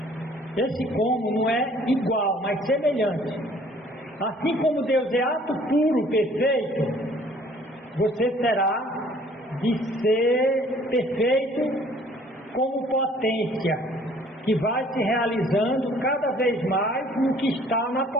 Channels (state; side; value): normal; both; correlation 0.56